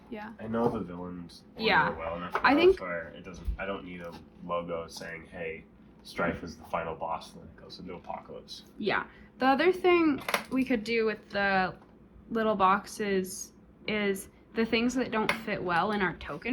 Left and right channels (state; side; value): identical; both; correlation 1.00